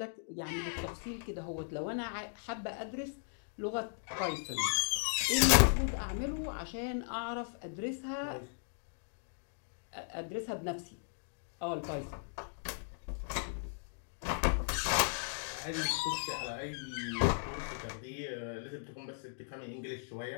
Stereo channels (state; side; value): silent; right; digital silence